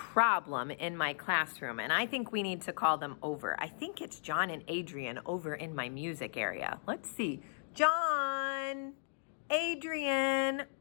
in my classroom, and I think we need to call them over. I think it's John and Adrian over in my music area. Let's see. John, Adrian.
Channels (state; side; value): silent; right; digital silence